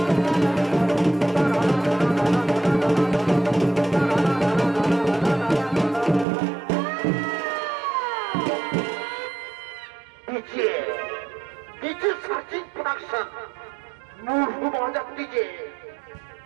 সার্চিং প্রোডাকশন মুরগু বাজার দিকে,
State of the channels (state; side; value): drops out; left; at 6.2 s